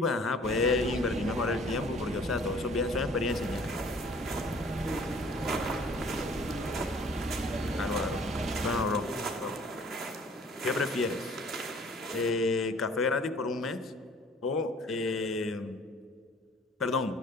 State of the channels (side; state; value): both; normal; correlation 0.53